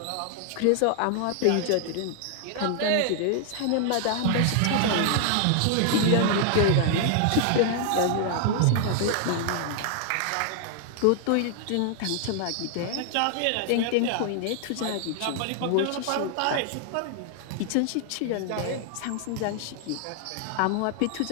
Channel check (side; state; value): both; different; correlation 0.00